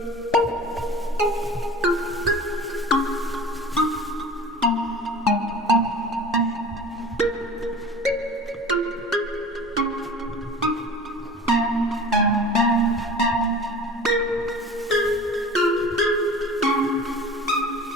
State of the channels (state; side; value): normal; both; correlation 0.39